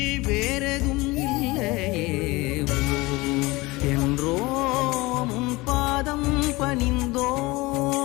வேறெதும் இல்லையே. என்றோம் உன் பாதம்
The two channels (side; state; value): right; quieter; 22.1 dB